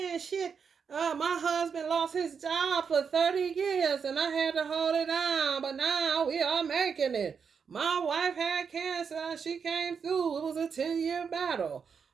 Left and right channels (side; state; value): left; quieter; 6.3 dB